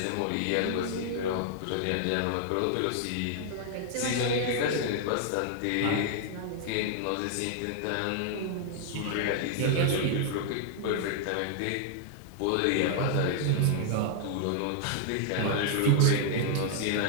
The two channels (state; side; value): different; both; correlation -0.01